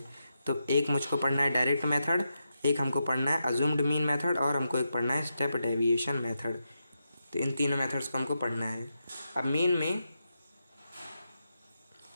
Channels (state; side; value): inverted; both; correlation -0.86